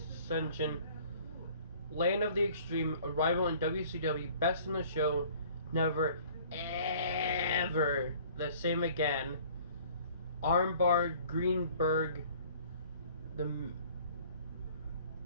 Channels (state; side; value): inverted; both; correlation -0.52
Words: Land of the Extreme, Arrival in WCW, Best in the Show, Never Ever the Same Again, Armbar, Greenberg, The